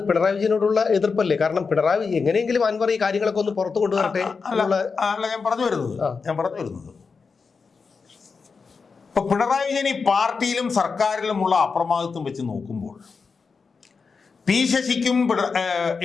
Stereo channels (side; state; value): right; quieter; 5.0 dB